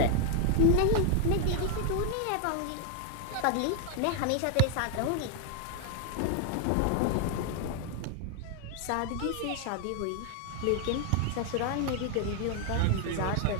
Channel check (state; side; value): different; both; correlation 0.00